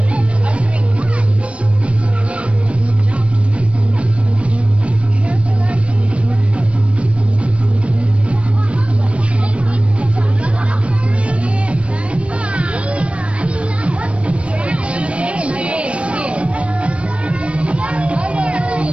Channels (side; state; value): left; late; 0.061 ms